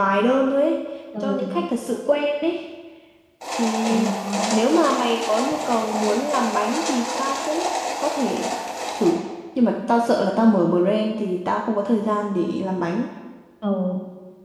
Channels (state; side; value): identical; both; correlation 1.00